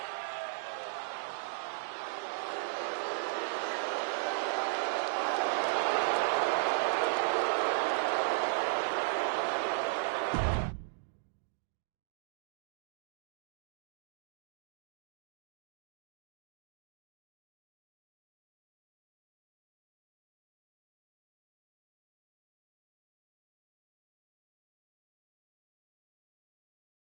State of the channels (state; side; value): silent; left; digital silence